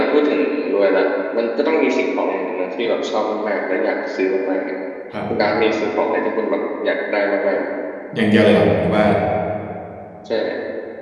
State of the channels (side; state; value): both; identical; correlation 1.00